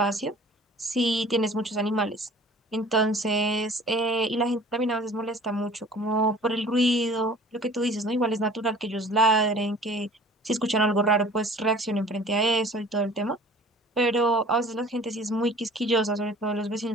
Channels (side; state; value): both; normal; correlation 0.48